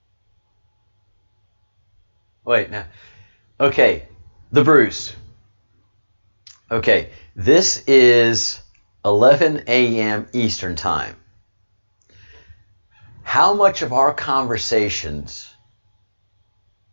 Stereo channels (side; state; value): both; inverted; correlation -1.00